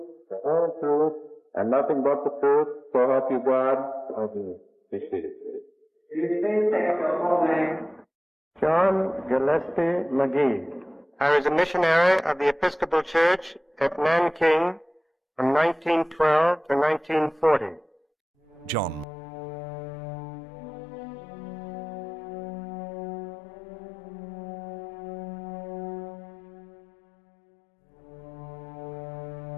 the whole truth, and nothing but the truth, so help you God. John Gillespie McGee. I was a missionary of the Episcopal Church at Nanking from 1912 to 1940. John McGee, an American missionary. The 105 minutes of footage he captured at great personal risk became the most irrefutable evidence in the trial of Iwane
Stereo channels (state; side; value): drops out; right; at 19.1 s